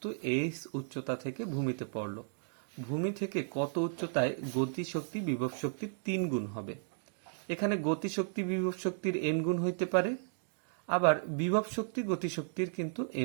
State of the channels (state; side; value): silent; left; digital silence